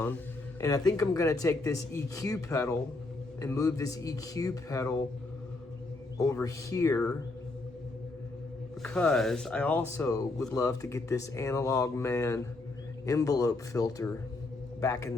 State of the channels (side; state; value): right; quieter; 3.2 dB